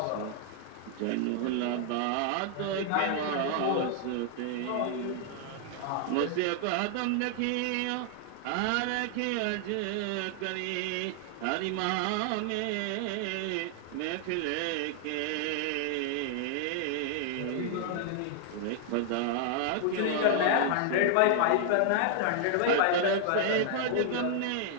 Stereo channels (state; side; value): different; both; correlation 0.00